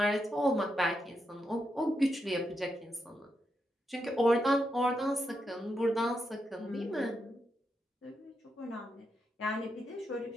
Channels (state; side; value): normal; both; correlation 0.84